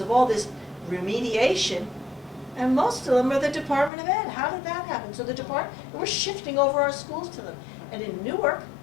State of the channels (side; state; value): right; drops out; at 3.9 s